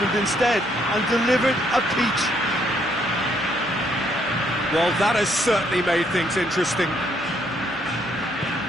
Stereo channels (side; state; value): both; normal; correlation 0.70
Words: instead and delivered a peach. Well, that has certainly made things interesting.